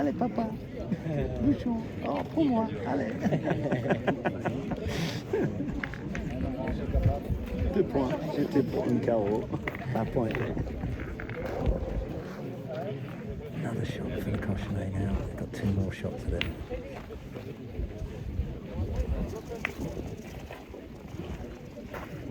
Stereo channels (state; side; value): identical; both; correlation 1.00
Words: papa, bouchon. Oh pour moi, allez. 2 points. J'étais pour une carreau. Un point. Another shot for the cochonnet now. They've got 2 more shots at it.